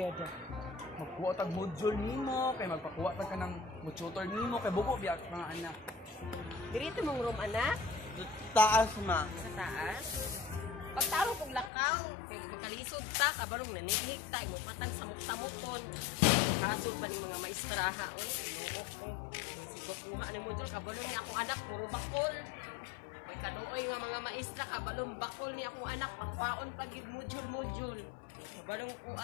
Magkuha tag module nimo kay magpakuha tag kanang tutor nimo kay bubo biya mga anak. Dirito mong room anak? Taas ma. Sa taas? Pagtaro kong lakaw, kay magkalisod ta, kabarong nanihig ta, imupatan samok-samokon. Kasol pa ni mga maestraha, oy, inuok ko. Kuha ni module, kabalong ni akong anak, puro bakol. May kanuoy nga mga maestra, kabalong bakol ni akong anak, pakwaon pagid module. Kabalong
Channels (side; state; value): right; drops out; at 11.7 s